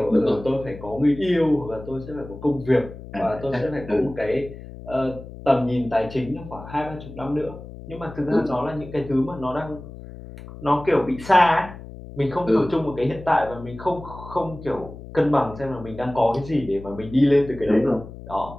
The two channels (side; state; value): left; noise; hum, 14 dB below the sound